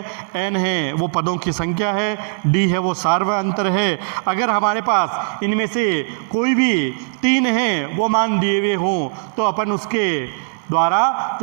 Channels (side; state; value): left; silent; digital silence